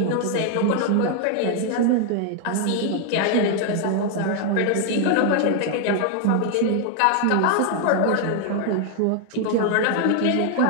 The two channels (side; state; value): both; different; correlation 0.00